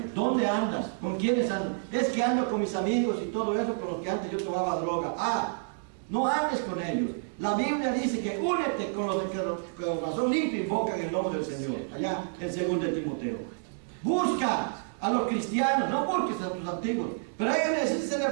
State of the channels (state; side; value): silent; left; digital silence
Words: ¿dónde andas? ¿Con quiénes andas? Es que ando con mis amigos y todo eso, con los que antes yo tomaba droga. No andes con ellos. La Biblia dice que únete con los que con corazón limpio invocan el nombre del Señor. Allá en 2 de Timoteo. Busca a los cristianos, no busques a tus antiguos. Pero ellos necesitan ser